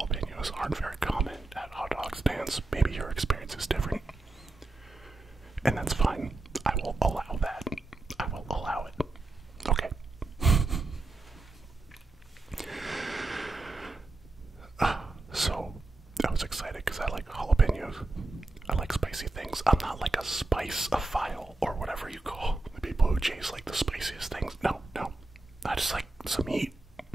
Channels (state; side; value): quieter; left; 3.0 dB